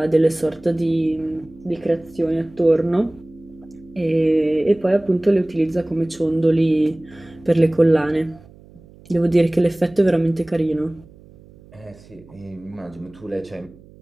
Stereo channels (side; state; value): right; noise; hum, 24 dB below the sound